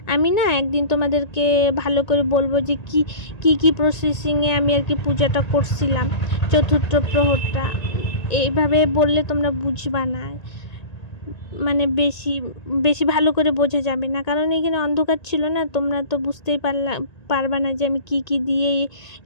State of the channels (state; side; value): late; right; 1.9 ms